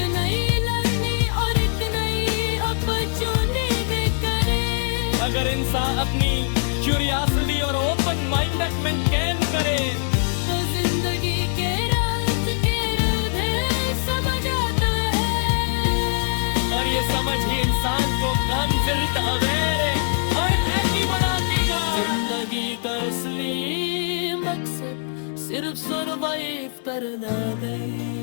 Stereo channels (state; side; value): silent; right; digital silence